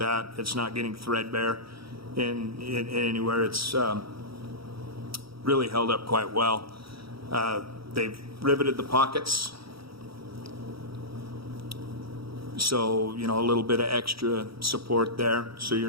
It's not getting threadbare in anywhere. It's really held up quite well. They've riveted the pockets, so, you know, a little bit of extra support there, so you're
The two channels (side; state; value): left; late; 0.75 ms